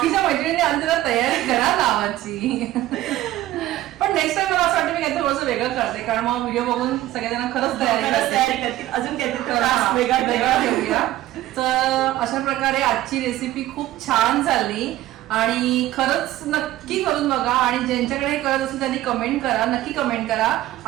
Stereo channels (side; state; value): left; quieter; 15.0 dB